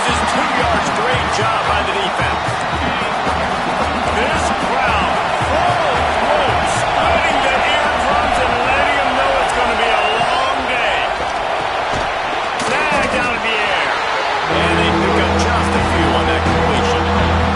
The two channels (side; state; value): both; identical; correlation 1.00